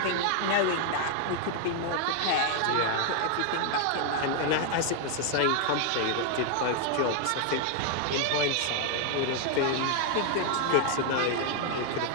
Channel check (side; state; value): both; different; correlation 0.00